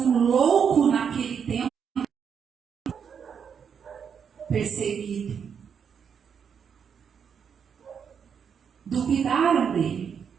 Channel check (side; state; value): left; quieter; 7.2 dB